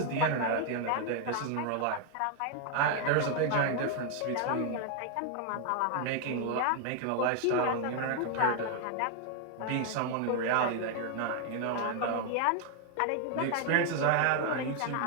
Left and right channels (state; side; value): different; both; correlation 0.00